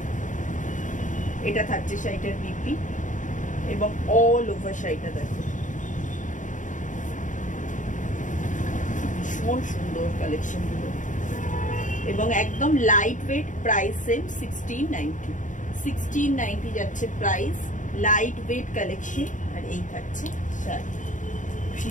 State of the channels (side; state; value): right; late; 0.37 ms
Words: এটা থাকছে শাড়িটার বিপি এবং অল ওভার শাড়িটা দেখো ভীষণ সুন্দর কালেকশন গুলো এবং একদম লাইট ওয়েট। Price same 1690। 1690 যাচ্ছে প্রাইস, লাইট ওয়েট কালেকশন। আর এই থাকছে শাড়ি,